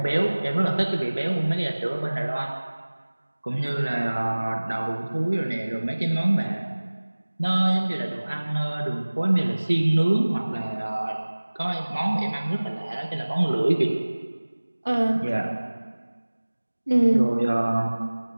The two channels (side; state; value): both; inverted; correlation -1.00